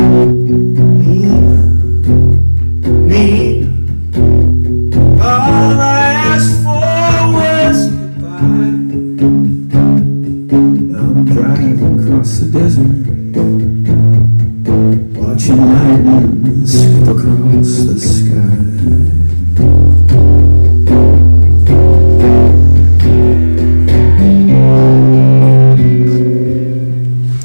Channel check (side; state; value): both; inverted; correlation -1.00